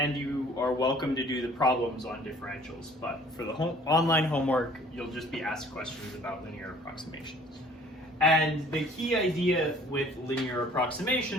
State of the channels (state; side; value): normal; both; correlation 0.54